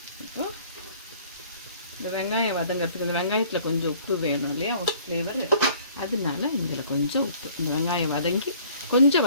இப்போ இந்த வெங்காயம் வதங்கிறதுக்கு இந்த வெங்காயத்தில் கொஞ்சம் உப்பு வேணும் இல்லையா, ஃப்ளேவர். அதனால இதில் கொஞ்சம் உப்பு, இந்த வெங்காயம் வதங்கி கொஞ்சம்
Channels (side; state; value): both; inverted; correlation -0.54